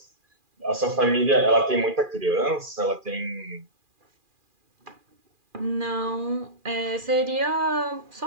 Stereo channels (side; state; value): left; late; 2.4 ms